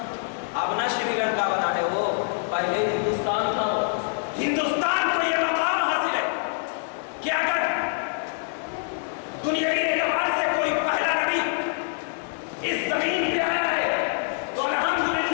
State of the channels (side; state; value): right; silent; 61 dB below the other